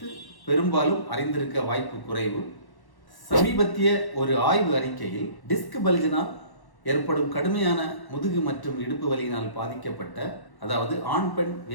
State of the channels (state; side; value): late; right; 1.1 ms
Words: பெரும்பாலும் அறிந்திருக்க வாய்ப்பு குறைவு. சமீபத்திய ஒரு ஆய்வு அறிக்கையில் டிஸ்க் பெல்ஜினால் ஏற்படும் கடுமையான முதுகு மற்றும் இடுப்பு வலியினால் பாதிக்கப்பட்ட, அதாவது ஆண் பெண்